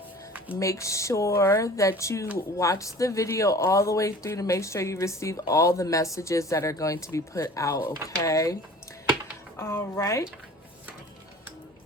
make sure that you watch the video all the way through to make sure you receive all the messages that are going to be put out, okay? All right.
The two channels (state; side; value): normal; both; correlation 0.44